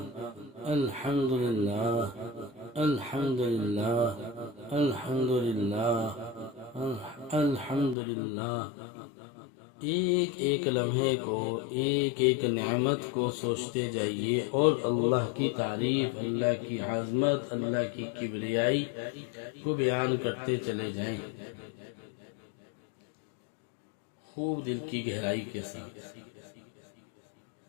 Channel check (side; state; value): right; drops out; at 8.0 s